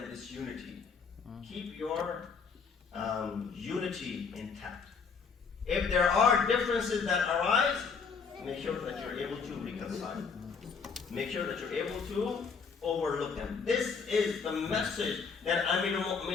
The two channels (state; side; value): quieter; right; 5.5 dB